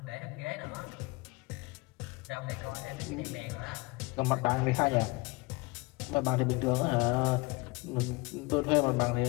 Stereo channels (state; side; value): quieter; right; 25.1 dB